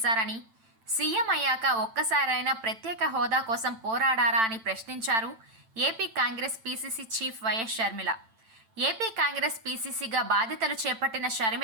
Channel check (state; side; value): late; left; 9.0 ms